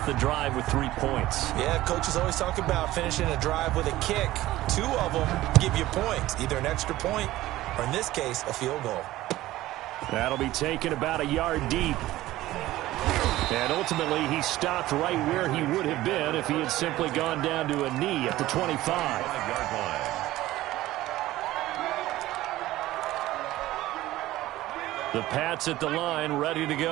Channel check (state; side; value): quieter; left; 16.2 dB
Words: the drive with 3 points. Yeah, coaches always talk about finishing a drive with a kick. 2 of them give you points, either an extra point or, in this case, a field goal. That'll be taken about a yard deep. And ultimately, he stopped right where he would have been if he had simply gone down to a knee at the 25. 5-yard line. The Pats at the line, ready to